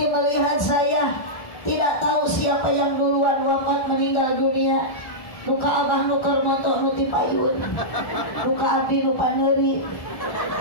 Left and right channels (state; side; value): late; right; 1.4 ms